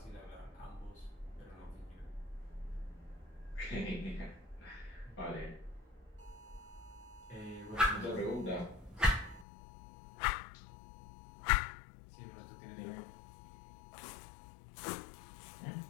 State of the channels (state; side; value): drops out; right; at 9.5 s